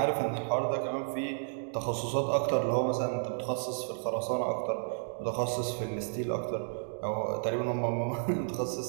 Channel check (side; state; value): left; silent; digital silence